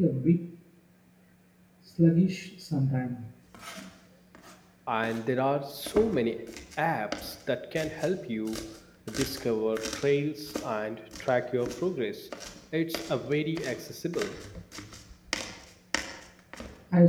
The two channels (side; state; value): both; identical; correlation 1.00